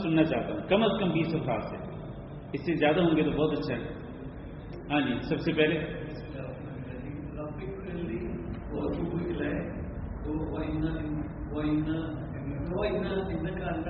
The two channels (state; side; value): identical; both; correlation 1.00